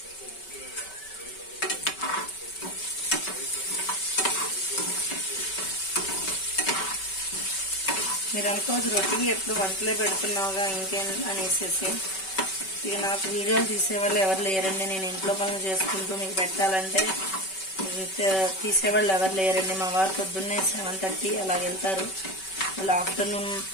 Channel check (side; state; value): right; late; 5.2 ms